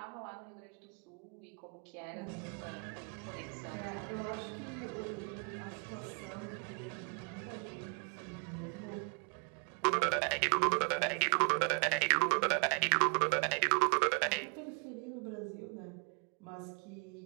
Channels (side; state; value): left; quieter; 37.1 dB